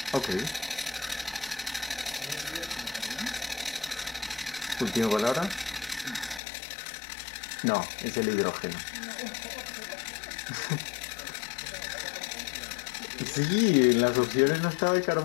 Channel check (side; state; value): right; drops out; at 6.4 s